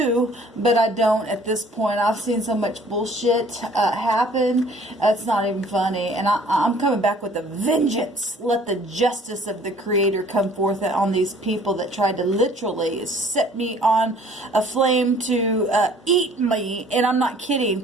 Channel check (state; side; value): normal; both; correlation 0.54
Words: but I don't at this point. I've seen so much bullshit happen. It's not even funny. And I'm coming back with a vengeance. Let the justice of the Creator come forth on these people that tried to literally set me on a flame to eat me. And I'm not kidding.